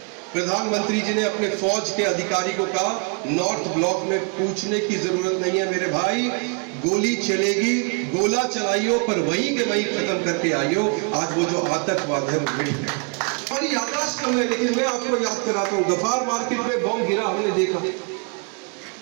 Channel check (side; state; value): left; quieter; 35.4 dB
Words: प्रधानमंत्री जी ने अपने फौज के अधिकारी को कहा, नॉर्थ ब्लॉक में पूछने की जरूरत नहीं है मेरे भाई, गोली चलेगी, गोला चलाइयो, पर वहीं के वहीं खत्म करके आइयो। आज वो जो आतंकवाद है वो मिट गया। और याददाश्त कम है, लेकिन मैं आपको याद कराता हूँ, गफार मार्केट में बम गिरा हमने देखा,